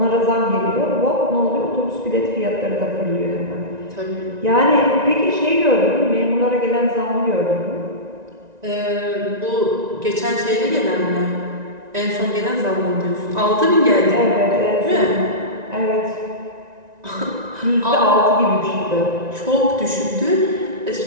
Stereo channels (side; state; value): left; late; 1.9 ms